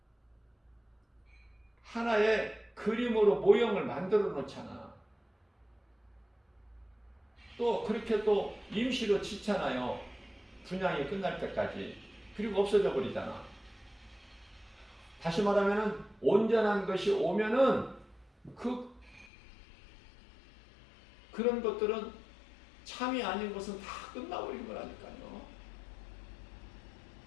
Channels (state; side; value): drops out; right; at 19.2 s